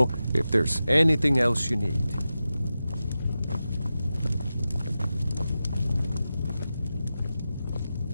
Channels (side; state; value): both; inverted; correlation -0.92